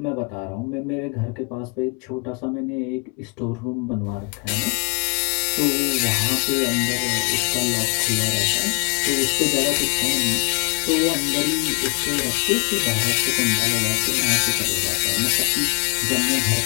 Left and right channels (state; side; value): quieter; right; 34.0 dB